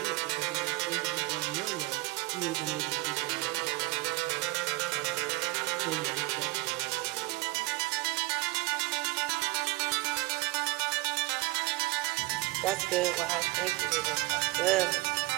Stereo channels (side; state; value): left; quieter; 21.8 dB